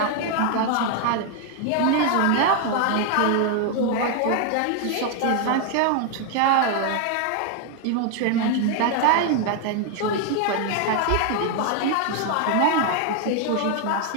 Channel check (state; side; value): different; both; correlation 0.00